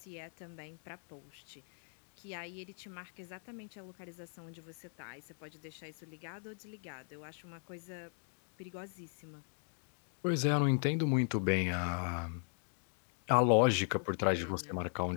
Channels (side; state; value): right; silent; 52 dB below the other